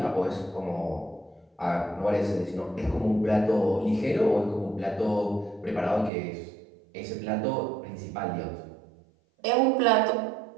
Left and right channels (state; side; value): drops out; left; at 6.1 s